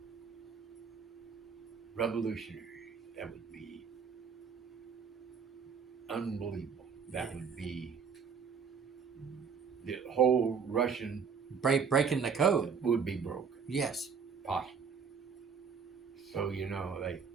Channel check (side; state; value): left; quieter; 6.2 dB